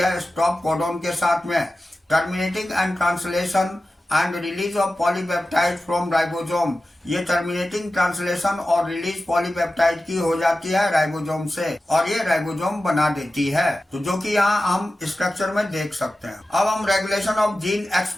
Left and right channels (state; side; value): normal; both; correlation 0.94